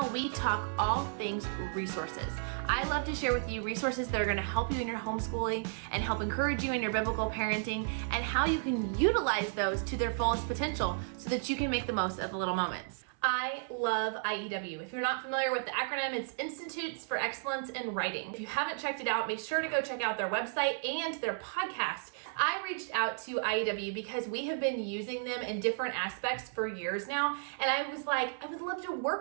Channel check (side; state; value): left; silent; 55 dB below the other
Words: we talk all things resources. I love to share with you resources that are going to help you in your homeschooling and help encourage you in your biblical parenting, and how you can utilize those to their fullest potential so that you can make the most of the little moments. I love IEW. If you're not familiar with the acronym, it's Institutes for Excellence in Writing. If you haven't checked it out, make sure to go check out their website and their podcast. I reached out to IEW because we have been using them in different aspects for years now, and I was like, I would love to